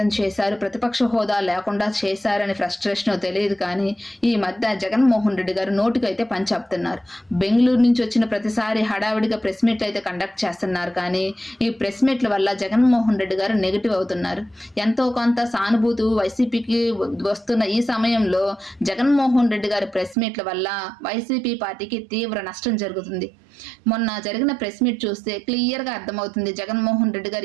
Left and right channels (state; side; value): drops out; left; at 20.2 s